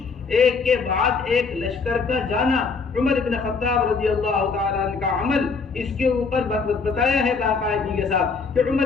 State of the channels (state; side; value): quieter; right; 4.8 dB